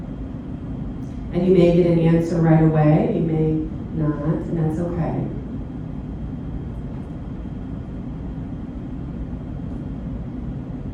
And you may get an answer right away, you may not, and that's okay.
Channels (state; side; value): identical; both; correlation 1.00